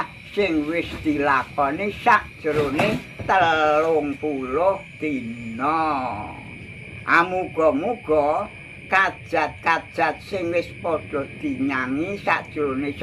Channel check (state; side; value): identical; both; correlation 1.00